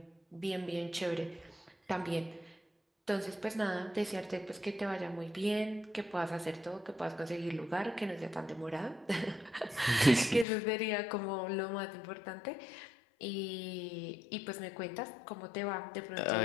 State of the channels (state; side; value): drops out; right; at 10.5 s